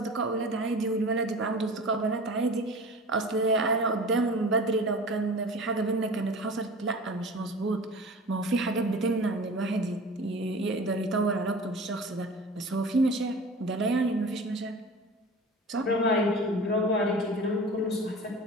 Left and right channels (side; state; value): both; normal; correlation 0.38